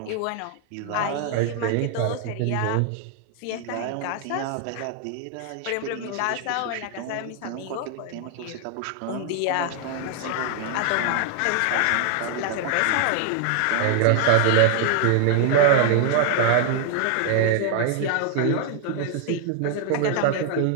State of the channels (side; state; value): both; different; correlation 0.00